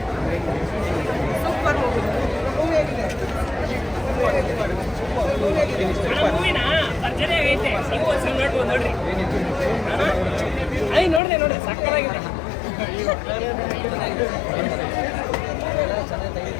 ನೋಡಿದೆ ಸಕ್ಕತ್ತಾಗಿದೆ. ಚೆನ್ನಾಗಿ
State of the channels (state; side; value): drops out; right; at 11.2 s